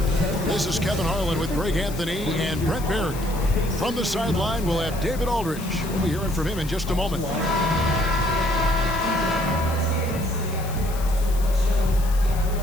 This is Kevin Harlan with Greg Anthony and Brent Barry. From the sideline, we'll have David Aldridge. We'll be hearing from him in just a moment. Look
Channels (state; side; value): noise; left; hiss, 15 dB below the sound